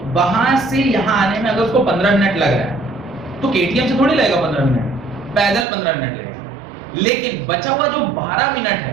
वहां से यहां आने में अगर उसको 15 मिनट लग रहा है तो केटीएम से थोड़ी लगेगा 15 मिनट, पैदल 15 मिनट लगेगा। लेकिन बचा हुआ जो 12 मिनट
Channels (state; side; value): drops out; left; at 5.7 s